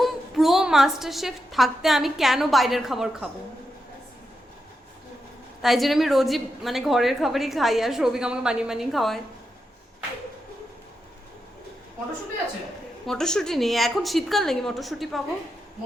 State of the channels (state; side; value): normal; both; correlation 0.86